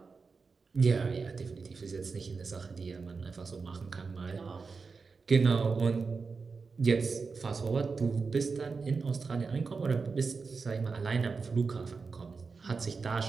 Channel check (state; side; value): quieter; left; 4.7 dB